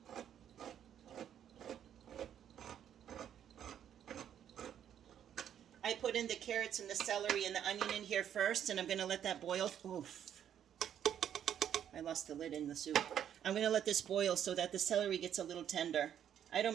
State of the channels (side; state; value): left; quieter; 9.7 dB